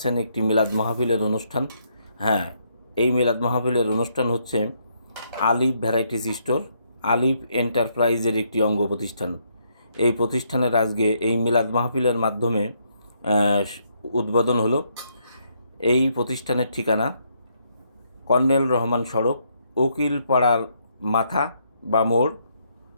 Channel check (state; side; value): inverted; both; correlation -0.74